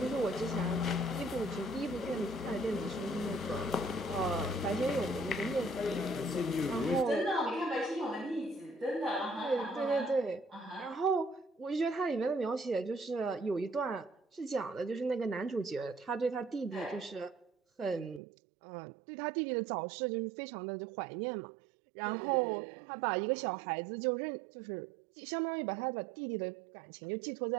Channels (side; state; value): left; drops out; at 18.2 s